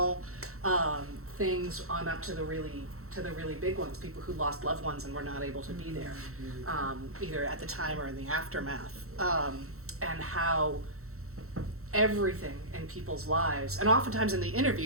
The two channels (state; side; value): late; left; 0.63 ms